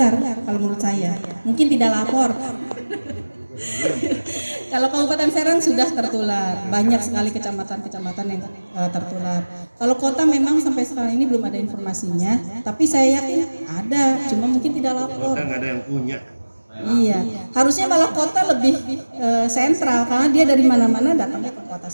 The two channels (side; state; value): both; inverted; correlation -1.00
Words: kalau menurut saya. Mungkin tidak lapor. Kalau Kabupaten Serang sudah tertular, banyak sekali kecamatan-kecamatan yang tertular. Kalau kota memang sampai sekarang ini belum ada informasinya, tapi saya yakin ada, cuma mungkin tidak lapor. Kota nggak ada yang punya. Iya, harusnya malah kota lebih sentral karena dia dari mana-mana datangnya ke kota